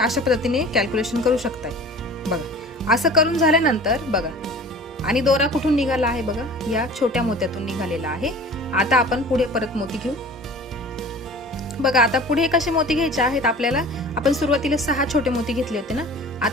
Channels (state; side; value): normal; both; correlation 0.42